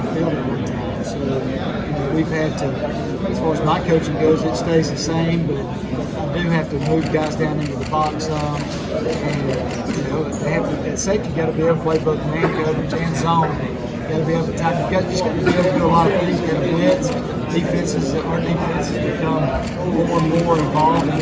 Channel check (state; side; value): identical; both; correlation 1.00